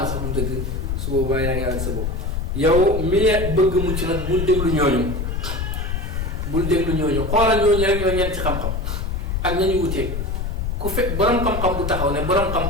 sax du dëgg su boobaa yaa ngi àgg sa bopp yow mi bëgg mucc nag bul déglu ñooñu xoolal ñooñu rek ñoo ñeent ci xam-xam ak nañu wuteeg ku fekk borom xam-xam bu taxaw ne borom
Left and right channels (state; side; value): noise; left; rumble, 2 dB below the sound